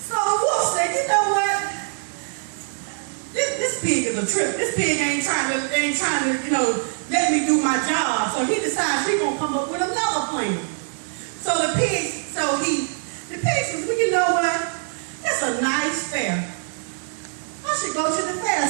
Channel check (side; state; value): left; silent; digital silence